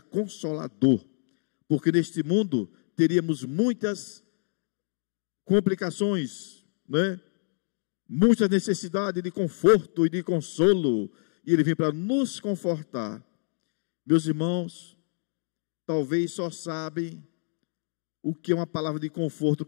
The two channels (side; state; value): right; silent; digital silence